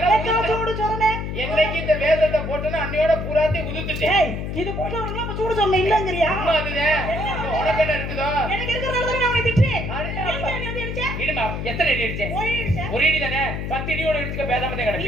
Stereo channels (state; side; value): noise; left; hum, 4 dB below the sound